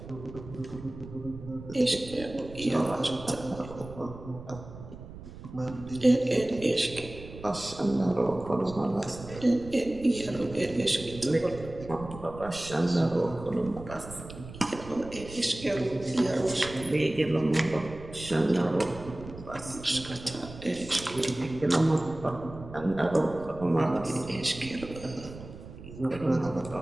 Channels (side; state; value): right; noise; rumble, 14 dB below the sound